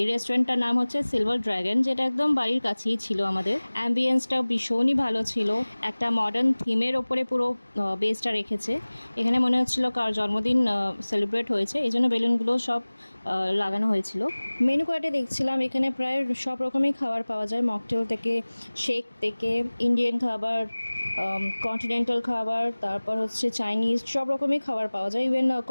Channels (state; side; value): inverted; both; correlation -1.00